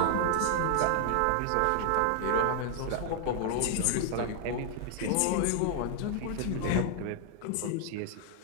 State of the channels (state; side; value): different; both; correlation -0.01